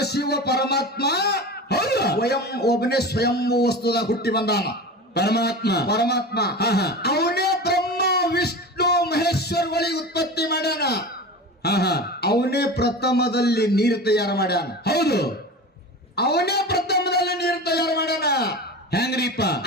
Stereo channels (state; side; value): normal; both; correlation 0.30